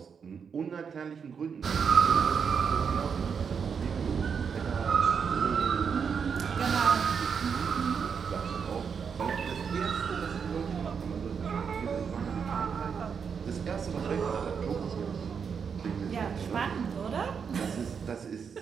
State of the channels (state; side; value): quieter; left; 6.5 dB